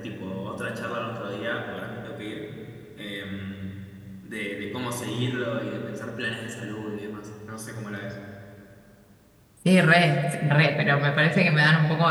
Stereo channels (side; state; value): both; identical; correlation 1.00